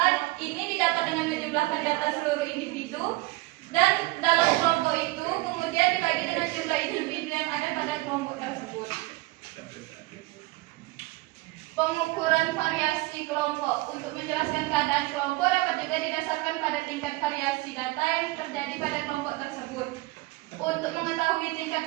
ini didapat dengan menjumlahkan data seluruh individu dan dalam kelompok itu kemudian dibagi dengan jumlah individu yang ada pada kelompok tersebut. Pengukuran variasi kelompok. Untuk menjelaskan keadaan kelompok dapat juga didasarkan pada tingkat variasi data yang terjadi pada kelompok tersebut. Untuk mengetahui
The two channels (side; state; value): left; quieter; 21.2 dB